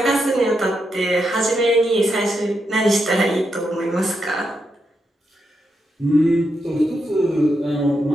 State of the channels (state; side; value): normal; both; correlation 0.83